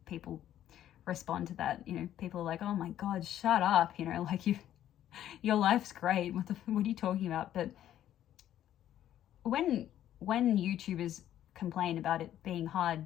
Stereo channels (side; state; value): right; quieter; 11.7 dB